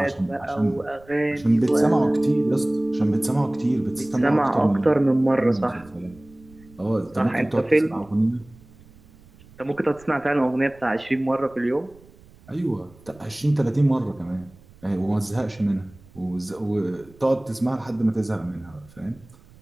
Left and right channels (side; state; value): right; noise; rumble, 25 dB below the sound